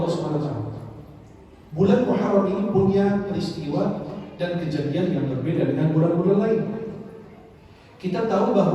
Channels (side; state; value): both; identical; correlation 1.00